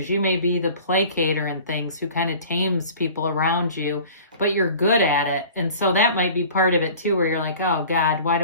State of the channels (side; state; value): both; inverted; correlation -0.44